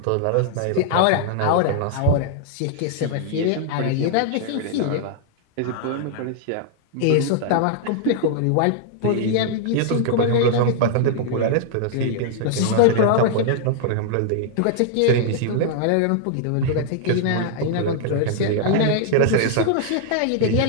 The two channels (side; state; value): both; different; correlation -0.01